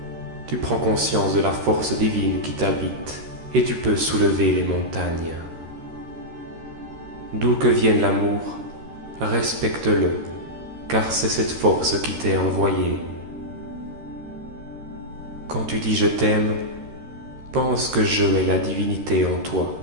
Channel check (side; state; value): left; late; 13 ms